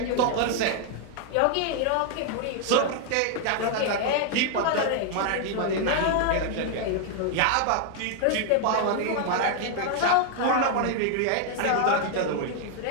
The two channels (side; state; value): both; different; correlation 0.00